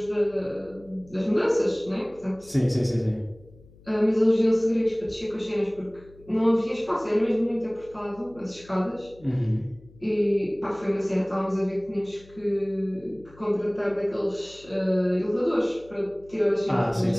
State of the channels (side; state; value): left; noise; hum, 24 dB below the sound